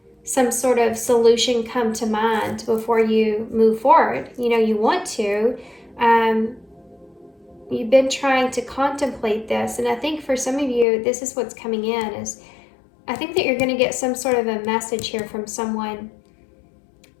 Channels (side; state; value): right; drops out; at 10.9 s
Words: some sort of solution come to mind before you move forward. You know, you want to. You've been trying to contemplate this, and I think for some of you, this is what's coming in, is I think that you're going to get some sort of a message here from someone